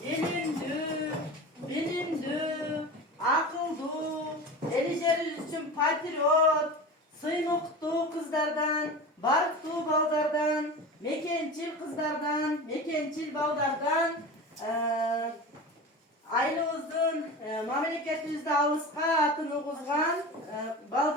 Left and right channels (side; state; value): both; normal; correlation 0.31